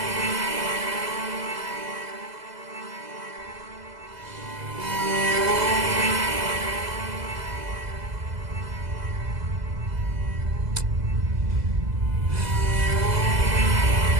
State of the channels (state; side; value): late; left; 2.0 ms